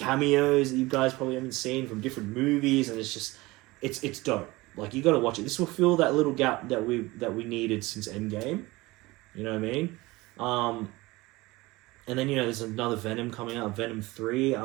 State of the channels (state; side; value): quieter; left; 21.1 dB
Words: that you guys probably haven't seen from different movies, and it's dope. You got to watch it. This will fill that little gap that we needed since Endgame. You know what I mean? And then there's another Venom coming out, Venom 3.